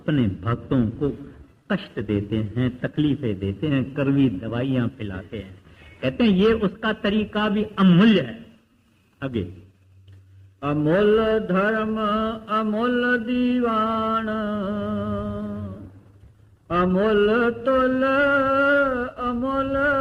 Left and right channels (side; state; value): both; identical; correlation 1.00